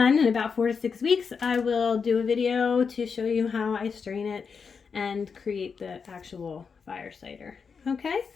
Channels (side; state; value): right; quieter; 5.7 dB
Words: in about 4 to 6 weeks, I will do a video to show you how I strain it and create the actual fire cider. Okay?